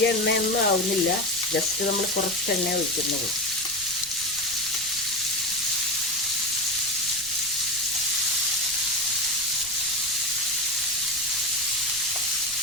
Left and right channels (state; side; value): noise; right; rumble, 19 dB below the sound